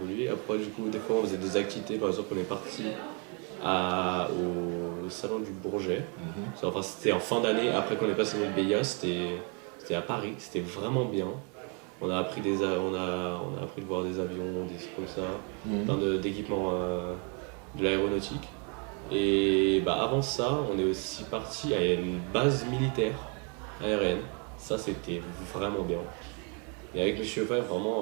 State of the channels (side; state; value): left; quieter; 33.9 dB